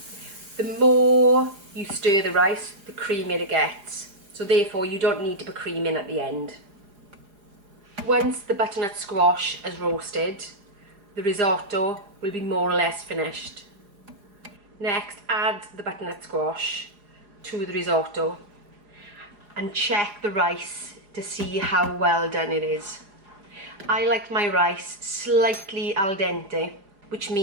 The more you stir the rice, the creamier it gets. So therefore you don't need to put cream in at the end. Once the butternut squash is roasted, the risotto will be more or less finished. Next, add the butternut squash to the risotto and check the rice to see how well done it is. I like my rice slightly al dente, which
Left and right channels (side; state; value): left; late; 4.9 ms